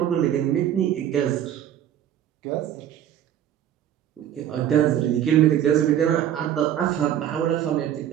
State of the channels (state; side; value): quieter; left; 10.7 dB